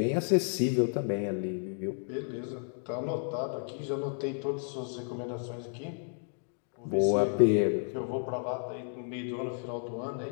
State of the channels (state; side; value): silent; right; 56 dB below the other